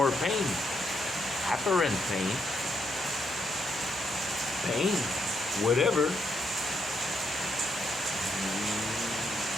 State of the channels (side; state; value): both; normal; correlation 0.77